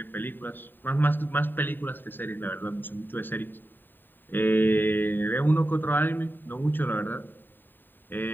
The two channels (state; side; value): late; right; 0.093 ms